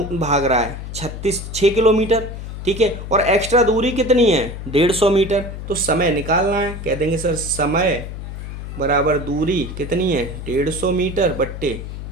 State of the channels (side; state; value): left; noise; hum, 8 dB below the sound